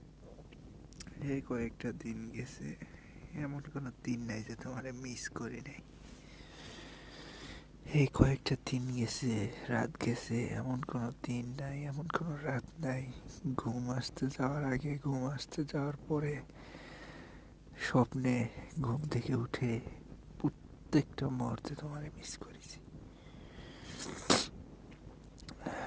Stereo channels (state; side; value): identical; both; correlation 1.00